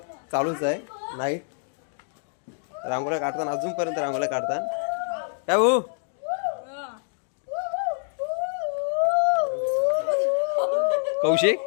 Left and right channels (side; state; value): right; silent; digital silence